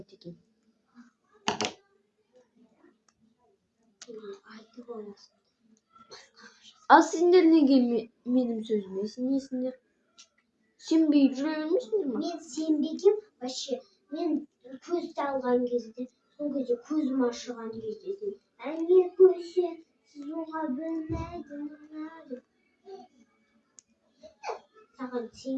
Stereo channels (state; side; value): identical; both; correlation 1.00